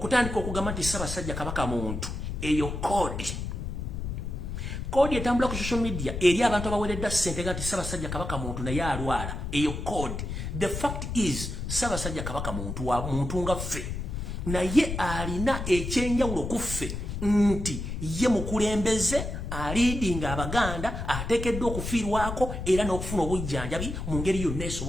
okugamba nti Ssaabasajja Kabaka muntu eyo kodi etambula ku social media eri abantu abaweredda ssente nga nti Ssaabasajja Kabaka muntu naye alwala eyo kodi. The fact is Ssaabasajja Kabaka muntu wa muntu nga ffe naye alina ekyenjawulo ku ffe nti ye mukulembeze aliidinga Abaganda ateekeddwa okufiirwako era n'okufuna obujjanjabi mu ngeri yonna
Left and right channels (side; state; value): left; noise; rumble, 5 dB below the sound